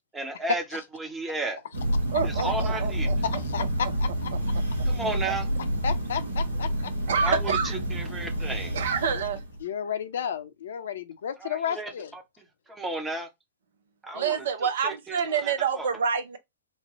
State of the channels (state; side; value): inverted; both; correlation -0.51